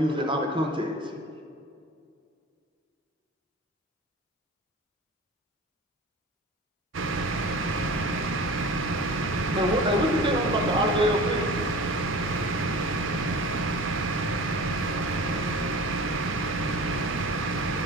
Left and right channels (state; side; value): normal; both; correlation 0.38